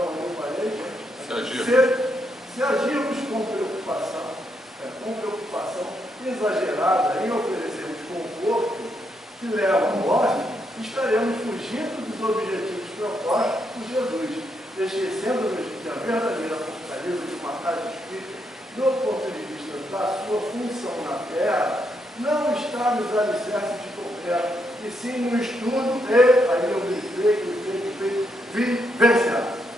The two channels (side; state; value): both; normal; correlation 0.78